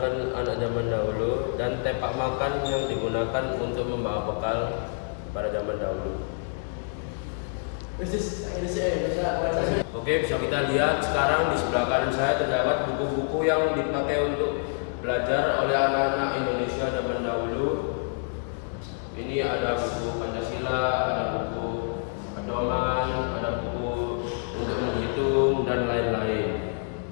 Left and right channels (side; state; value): right; silent; digital silence